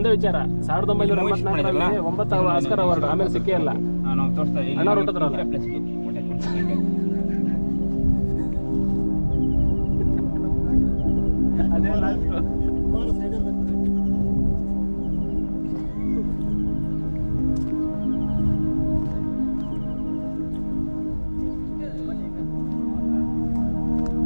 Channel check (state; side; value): inverted; both; correlation -1.00